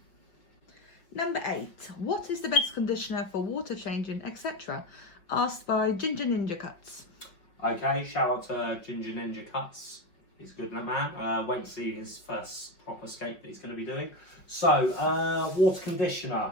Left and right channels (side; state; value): right; late; 5.5 ms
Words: Number 8. What is the best conditioner for water changing, etc.? Asked by Ginger Ninja Cuts. Okay, shout out to Ginger Ninja Cuts. He's a good man. Wait to see his first proper scape that he's going to be doing. So, water